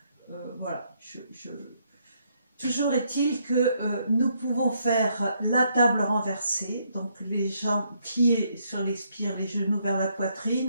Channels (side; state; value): both; inverted; correlation -0.73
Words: voilà, toujours est-il que nous pouvons faire la table renversée, donc les jambes, pieds sur l'expire, les genoux vers la